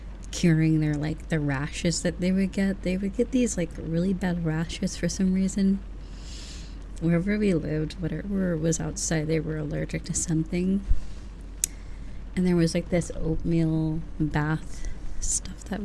curing their like the rashes that they would get. They would get these like really bad rashes for some reason. Wherever we lived, whatever was outside, they were allergic to something. And there was like this oatmeal bath stuff that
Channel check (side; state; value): both; identical; correlation 1.00